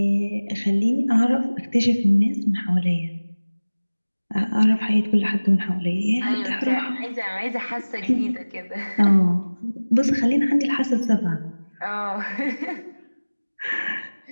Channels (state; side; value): inverted; both; correlation -1.00